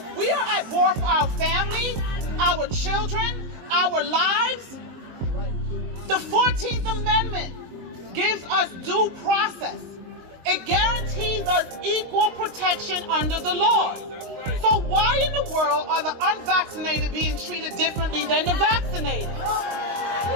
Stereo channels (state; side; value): late; left; 22 ms